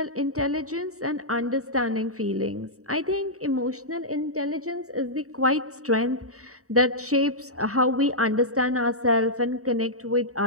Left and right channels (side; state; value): left; late; 0.65 ms